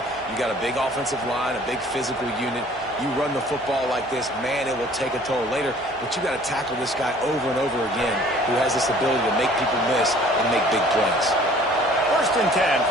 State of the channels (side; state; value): both; normal; correlation 0.52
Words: You got a big offensive line, a big physical unit. You run the football like this, man, it will take a toll later. But you got to tackle this guy over and over again who has this ability to make people miss and make big plays. 1st and 10